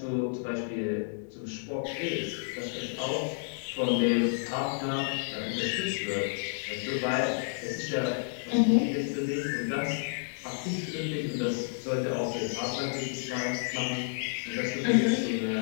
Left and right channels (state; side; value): silent; right; 55 dB below the other